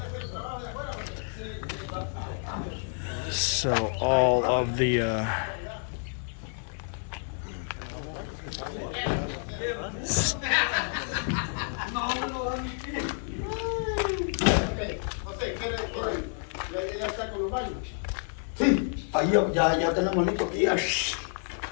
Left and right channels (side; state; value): right; silent; 58 dB below the other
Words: So all of the Sí, ahí ya tenemos listo aquí.